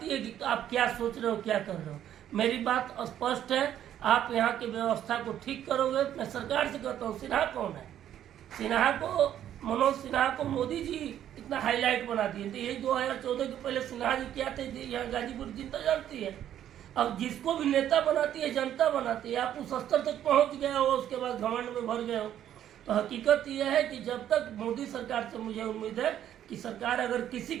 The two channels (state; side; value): quieter; left; 10.9 dB